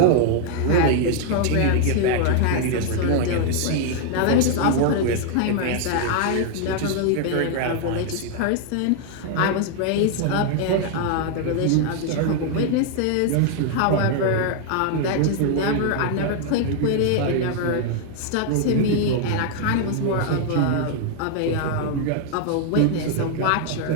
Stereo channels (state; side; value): different; both; correlation 0.00